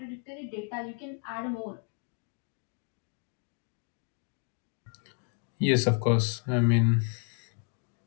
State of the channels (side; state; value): right; quieter; 39.8 dB